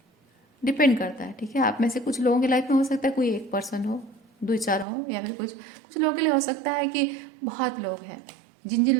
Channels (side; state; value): left; drops out; at 4.9 s